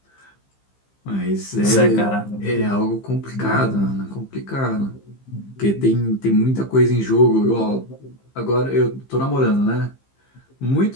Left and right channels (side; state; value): right; late; 15 ms